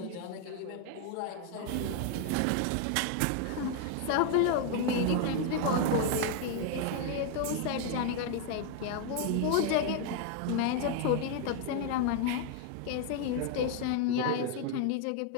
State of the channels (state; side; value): different; both; correlation 0.01